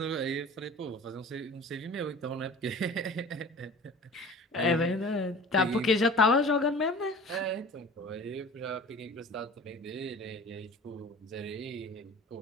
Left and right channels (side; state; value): both; normal; correlation 0.41